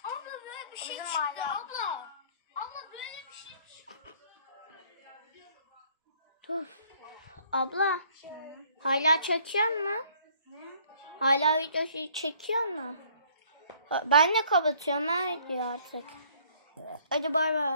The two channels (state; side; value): inverted; both; correlation -0.60